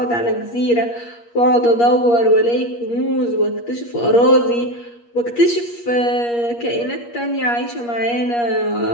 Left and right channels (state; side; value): late; right; 8.4 ms